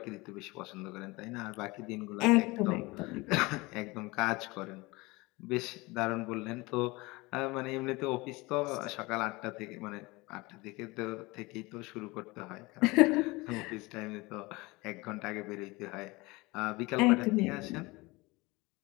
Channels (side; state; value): right; quieter; 23.3 dB